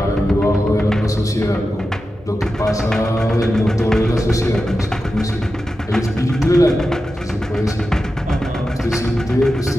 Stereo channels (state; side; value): normal; both; correlation 0.91